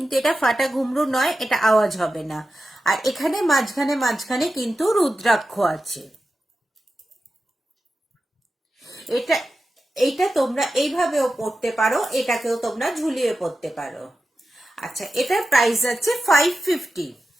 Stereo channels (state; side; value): normal; both; correlation 0.92